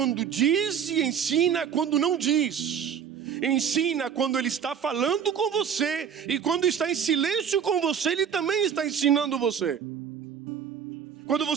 diz e ensina quando não diz. Ensina quando ele está falando com você, e quando está em silêncio com você, ele também está ensinando você. Quando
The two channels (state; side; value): quieter; left; 7.9 dB